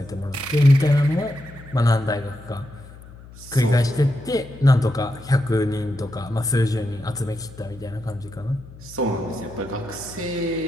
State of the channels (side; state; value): left; noise; hum, 19 dB below the sound